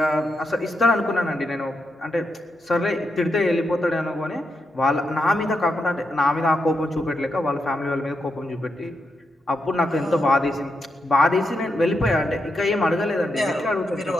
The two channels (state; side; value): normal; both; correlation 0.83